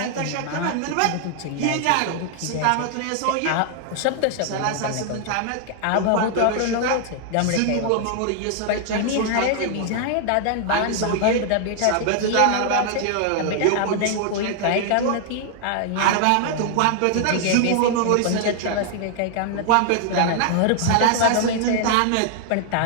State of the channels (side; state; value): both; different; correlation 0.00